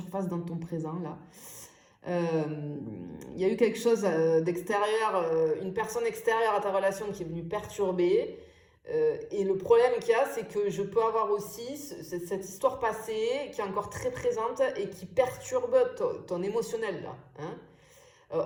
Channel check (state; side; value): identical; both; correlation 1.00